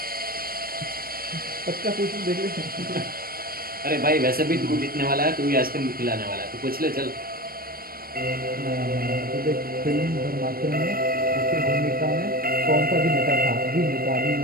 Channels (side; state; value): left; late; 0.43 ms